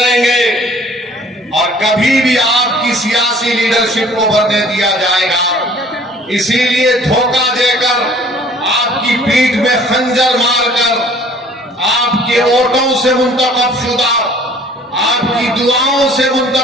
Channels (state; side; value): normal; both; correlation 0.54